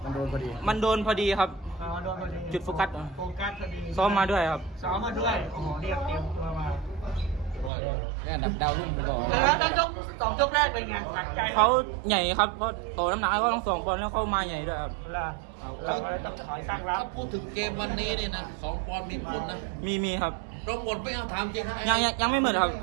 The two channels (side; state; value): left; drops out; at 7.7 s